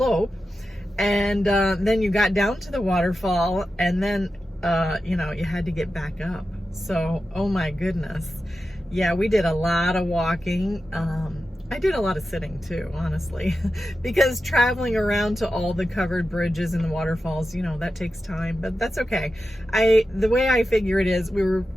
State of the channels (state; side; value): normal; both; correlation 0.91